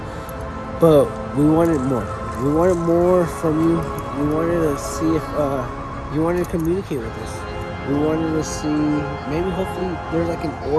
but we wanted more. We wanted more from you. We wanted to see if you wanted to communicate with us. We wanted to see, maybe hopefully there's like an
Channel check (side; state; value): both; identical; correlation 1.00